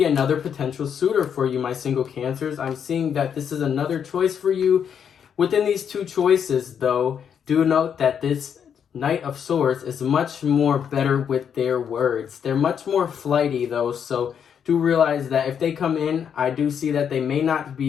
another potential suitor for you, my single Cancers. I'm seeing that this is another choice for you. Within these two choices, though, do note that this Knight of Swords is much more better with their words. They're much more flighty, though, so do realize that if they come in, I do see that they may not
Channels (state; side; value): quieter; right; 7.9 dB